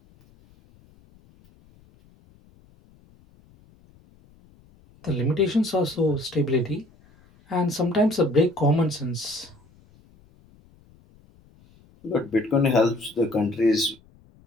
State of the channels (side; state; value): left; noise; rumble, 29 dB below the sound